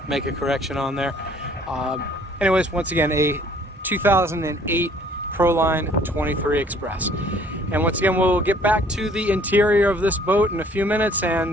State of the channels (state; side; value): normal; both; correlation 0.57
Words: make a correction on there. Anyways, once again, a 2008 Proline 23 Express. And once again, we'll get back to the interior of this boat in a few minutes